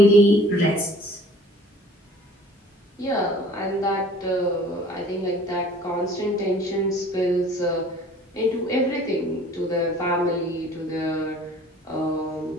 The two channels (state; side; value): normal; both; correlation 0.50